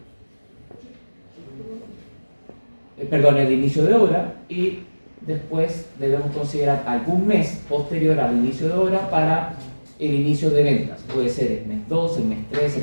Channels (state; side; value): inverted; both; correlation -1.00